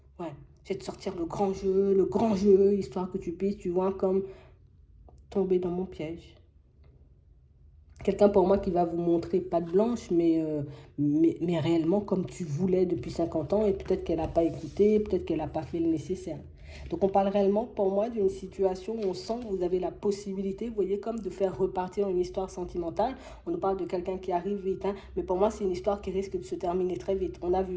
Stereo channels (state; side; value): identical; both; correlation 1.00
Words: Ouais, je vais te sortir le grand jeu, histoire que tu puisses, tu vois, comme tomber dans mon piège. Quelqu'un pour moi qui va vous montrer patte blanche, mais réellement comme tu voulais depuis 50 ans, et peut-être qu'elle n'a pas écouté, peut-être qu'elle n'a pas fait le nécessaire. Donc on parle réellement pour moi d'une situation où on sent que vous avez la possibilité, vous voyez, comme de faire repartir une histoire sentimentale. On nous parle de quelqu'un qui arrive vite, hein, mais pour moi c'est une histoire qui risque de se terminer très vite. On a